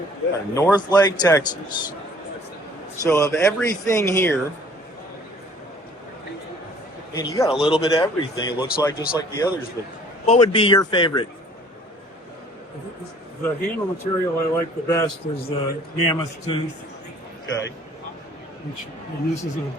North Lake, Texas. So of everything here, and you got a little bit of everything. It looks like just like the others. But what would be your favorite? The handle material I like the best is the mammoth tooth. Okay. And this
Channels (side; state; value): both; normal; correlation 0.54